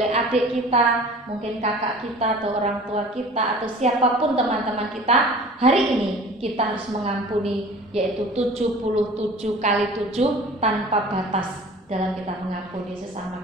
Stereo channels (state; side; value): normal; both; correlation 0.44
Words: adik kita, mungkin kakak kita atau orang tua kita atau siapapun teman-teman kita, hari ini kita harus mengampuni, yaitu 77 kali 7 tanpa batas. dalam kita mengampuni sesama